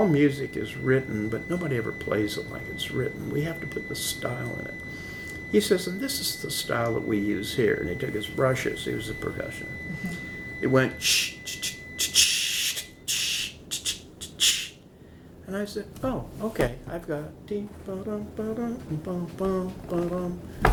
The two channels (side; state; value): both; identical; correlation 1.00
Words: music is written, but nobody ever plays it like it's written. We have to put the style in it. He says, and this is the style that we use here. And he took his brushes. He was a percussionist. It went ch ch ch ch ch ch ch. And I said, oh, okay, I've got dee ba dum ba dum ba bum ba dum.